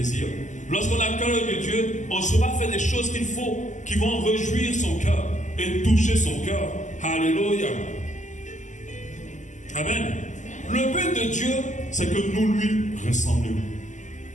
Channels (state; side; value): late; right; 0.35 ms